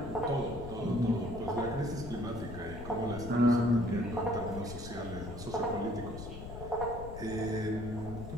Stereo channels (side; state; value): left; noise; rumble, 10 dB below the sound